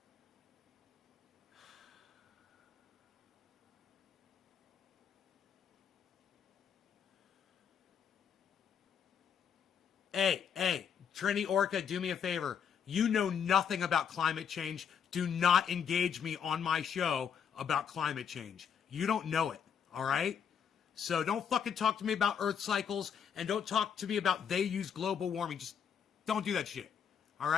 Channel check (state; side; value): quieter; right; 7.6 dB